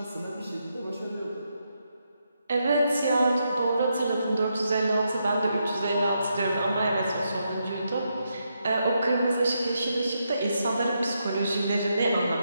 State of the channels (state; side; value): inverted; both; correlation -0.81